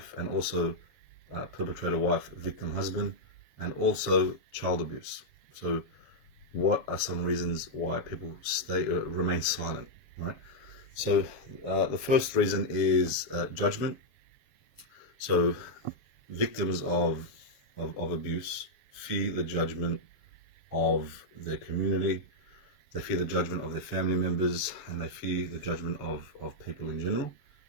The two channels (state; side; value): late; right; 7.2 ms